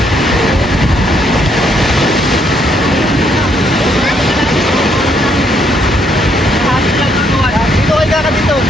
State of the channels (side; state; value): both; normal; correlation 0.71